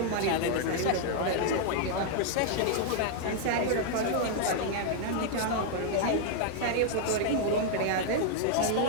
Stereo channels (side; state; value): both; different; correlation 0.00